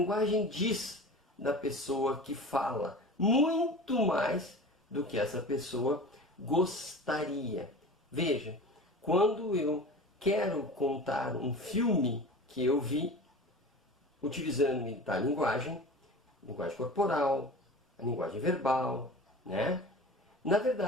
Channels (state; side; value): normal; both; correlation 0.36